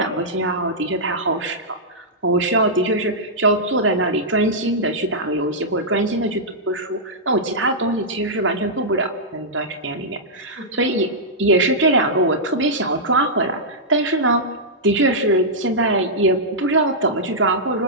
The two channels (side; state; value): both; normal; correlation -0.11